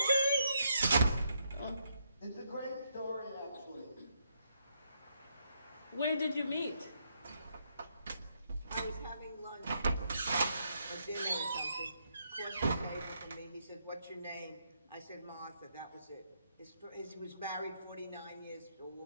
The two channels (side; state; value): both; inverted; correlation -0.77